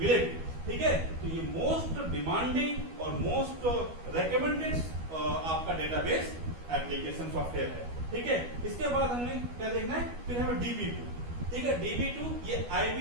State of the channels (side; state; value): left; late; 12 ms